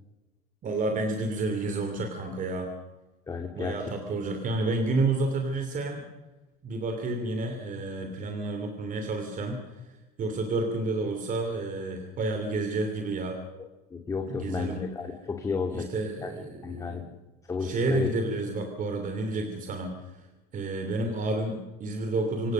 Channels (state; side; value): normal; both; correlation 0.52